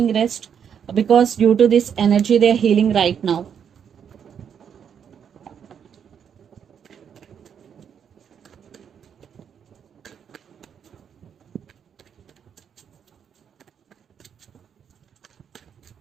rest, because due to this energy they're healing right now.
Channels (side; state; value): left; quieter; 7.9 dB